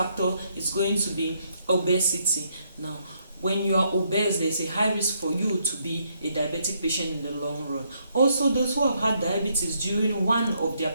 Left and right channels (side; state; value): both; inverted; correlation -0.74